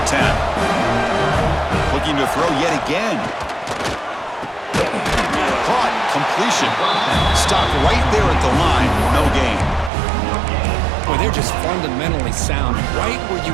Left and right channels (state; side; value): drops out; left; at 9.9 s